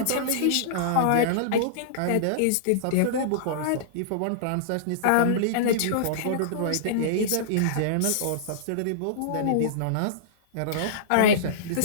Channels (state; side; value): different; both; correlation -0.03